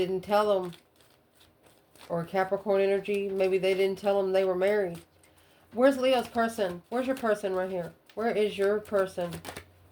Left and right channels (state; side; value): identical; both; correlation 1.00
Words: tell them. Or Capricorn energy. Maybe they didn't tell them they were married. Where's Leo's person? Where's your person right here? Where is your person?